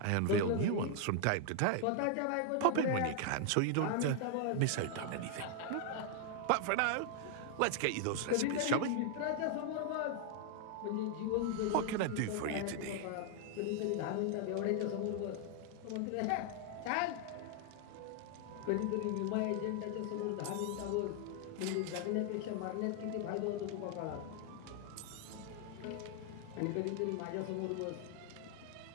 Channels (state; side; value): different; both; correlation 0.00